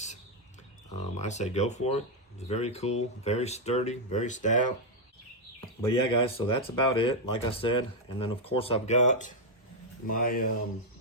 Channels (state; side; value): normal; both; correlation 0.00